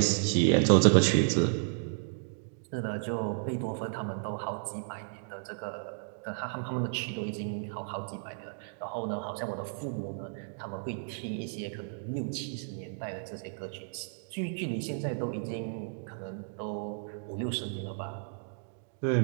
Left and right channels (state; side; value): silent; left; digital silence